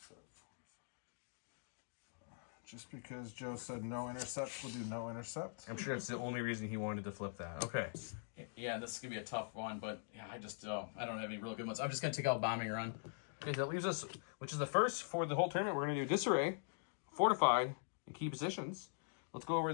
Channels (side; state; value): right; silent; digital silence